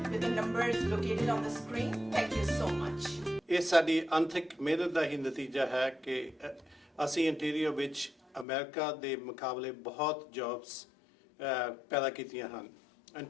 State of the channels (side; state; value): right; drops out; at 8.5 s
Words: with the numbers located on the screen. Thank you so much. ਇਹ ਸਾਡੀ ਅੰਤਿਕ ਮਿਹਨਤ ਦਾ ਹੀ ਨਤੀਜਾ ਹੈ ਕਿ ਅਸੀਂ ਇੰਟੀਰੀਅਰ ਵਿੱਚ ਅਮਰੀਕਾ ਦੇ ਮੁਕਾਬਲੇ ਬਹੁਤ ਜੌਬਸ ਪੈਦਾ ਕੀਤੀਆਂ ਹਨ।